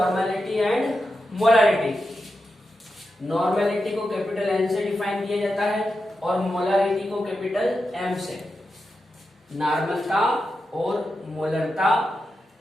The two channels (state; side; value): normal; both; correlation 0.89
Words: and molarity. Normality को कैपिटल एन से डिफाइन किया जाता है और मोलारिटी को कैपिटल एम से। नॉर्मलता और मोलरता